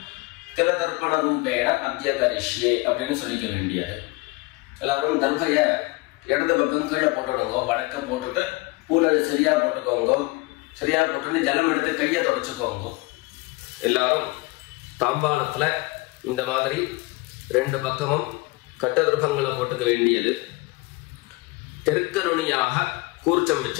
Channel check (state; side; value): quieter; right; 24.1 dB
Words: தில தர்ப்பண ரூபேண அத்ய கரிஷ்யே அப்படின்னு சொல்லிக்க வேண்டியது. எல்லாரும் தர்பைய இடது பக்கம் கீழே போட்டுடுங்க, வடக்க போட்டுட்டு பூனை சரியா போட்டுக்கோங்க. சரியா போட்டு ஜலம் எடுத்து கையை தொடச்சுக்கோங்க. எல்லாரும் தாம்பாளத்துல இந்த மாதிரி 2 பக்கமும் கட்டதிர்பங்களை போட்டுக்க வேண்டியது. தெற்கு நுனியாக கூர்ச்சம்